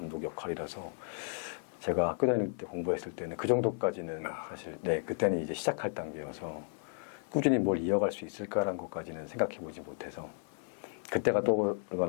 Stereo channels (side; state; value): right; silent; 55 dB below the other